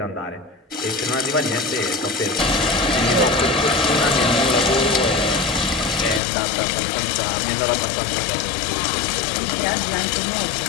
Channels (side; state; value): right; drops out; at 6.2 s